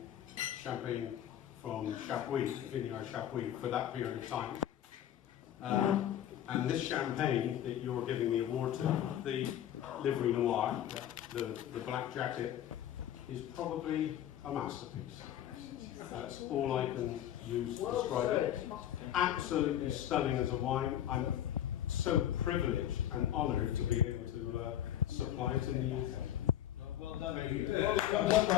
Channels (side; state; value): right; quieter; 11.2 dB